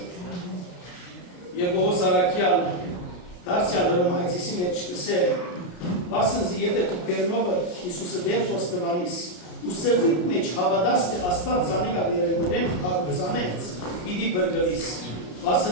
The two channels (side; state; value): right; late; 33 ms